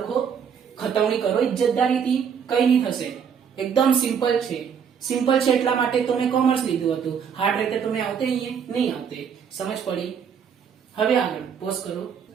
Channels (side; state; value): left; quieter; 7.3 dB